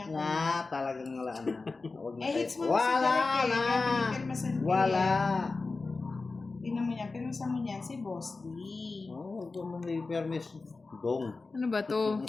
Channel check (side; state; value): right; quieter; 3.8 dB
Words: Talagang wala na. Hits mo Wala si Derek na. eh. Pinirmasan ko Wala. Tingnan mo yan, pinirmasan mo niyan si Boss D. Huwag mo may permis. Dong. Ano ba to?